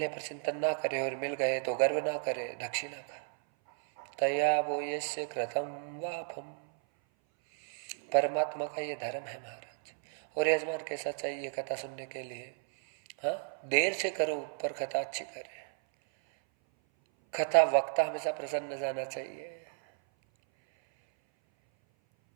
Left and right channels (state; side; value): silent; left; 56 dB below the other